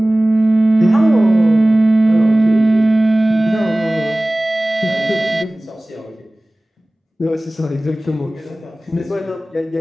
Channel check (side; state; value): both; normal; correlation 0.98